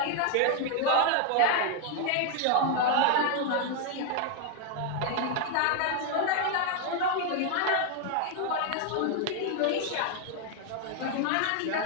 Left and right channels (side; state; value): both; different; correlation 0.01